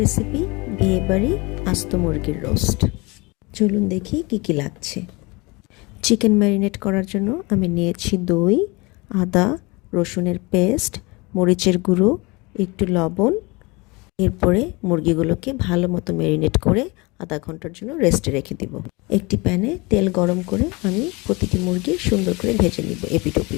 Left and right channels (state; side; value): quieter; right; 25.8 dB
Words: বিয়েবাড়ি আস্ত মুরগির রোস্ট। চলুন দেখি কি কি লাগছে। চিকেন ম্যারিনেট করার জন্য আমি নিয়েছি দই, আদা রসুনের পেস্ট, মরিচের গুঁড়ো, একটু লবণ। এরপরে মুরগিগুলোকে ভালো মতো ম্যারিনেট করে আধা ঘন্টার জন্য রেস্টে রেখে দিব। একটি প্যানে তেল গরম করে আমি প্রতিটি মুরগি সুন্দর করে ভেজে নিব এপিট